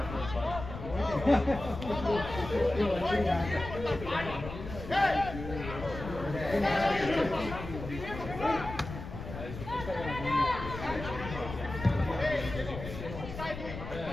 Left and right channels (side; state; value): left; noise; rumble, 9 dB below the sound